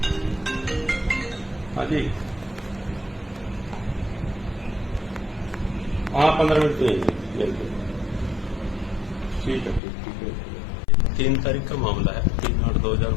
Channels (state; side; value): drops out; right; at 9.8 s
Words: हाँ जी, हाँ 15 मिनट में बिल्कुल ठीक है। 3 तारीख का मामला है,